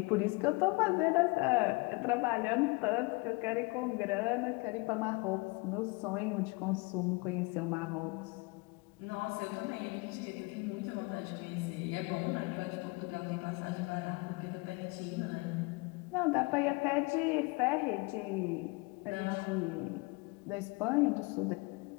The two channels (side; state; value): right; quieter; 26.8 dB